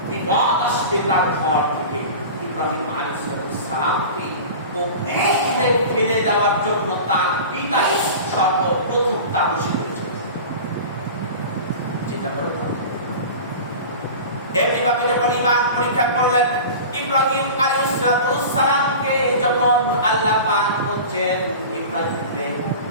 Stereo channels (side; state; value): both; inverted; correlation -0.34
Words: বিপদ আসবে তার ঘর থেকে। ইব্রাহিম আলাইহিস সালামকে অগ্নিতে ফেলে দেওয়ার জন্য তার পিতা সর্বপ্রথম তাবুশি করেছেন। চিন্তা করে এমনিভাবে যখন ঈমান পরীক্ষা করলেন ইব্রাহিম আলাইহিস সালামকে, যখন আল্লাহ পাক বলছেন ইব্রাহিমকে